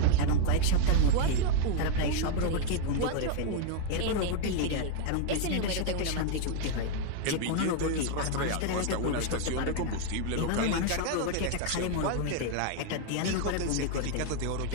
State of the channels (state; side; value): different; both; correlation 0.00